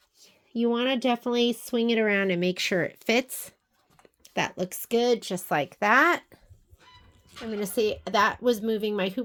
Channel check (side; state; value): both; identical; correlation 1.00